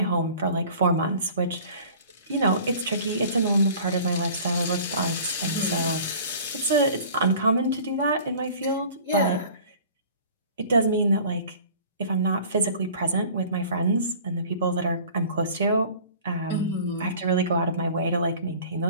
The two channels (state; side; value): inverted; both; correlation -0.46